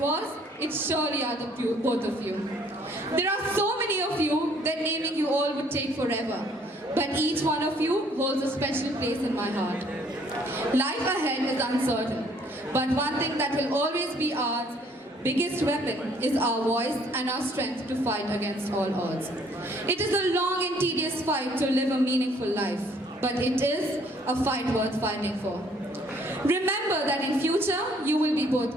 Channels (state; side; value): normal; both; correlation 0.62